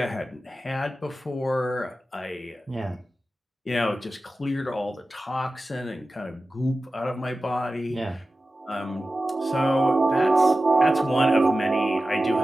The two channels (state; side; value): normal; both; correlation 0.94